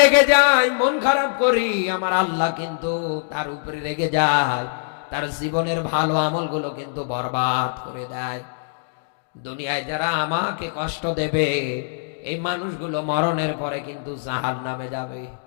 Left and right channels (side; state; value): right; silent; digital silence